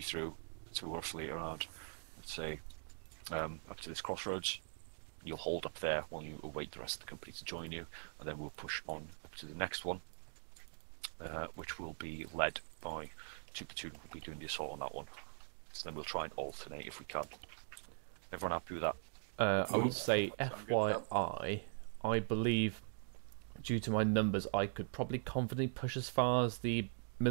through to roughly around, let's say, up to this crossroads. You'll hold up there while you await the rest of the company to join you, and then we'll push on up to the next one, which will be led by Two Platoon. We'll be doing the assault on that one. So then we'll try and alternate if we can. Everyone happy with that? I would say FYI, I believe, due to my numbers, I could probably confidently push as far as the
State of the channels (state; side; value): silent; left; digital silence